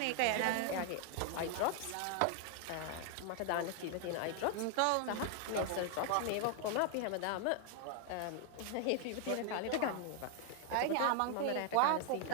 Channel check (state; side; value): different; both; correlation 0.00